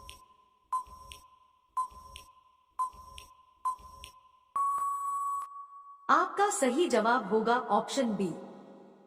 आपका सही जवाब होगा ऑप्शन बी,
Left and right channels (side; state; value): both; identical; correlation 1.00